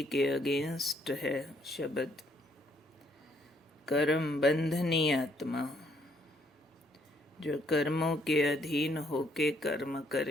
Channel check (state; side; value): normal; both; correlation 0.69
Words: के अगेंस्ट है शब्द कर्म बंधनी आत्मा, जो कर्मों के अधीन होके कर्म